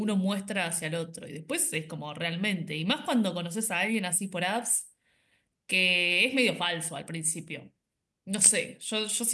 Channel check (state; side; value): identical; both; correlation 1.00